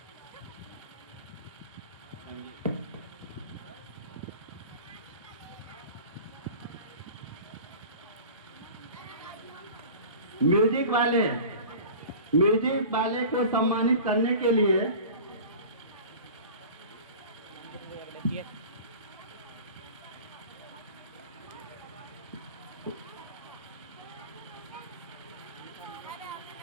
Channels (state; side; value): inverted; both; correlation -0.38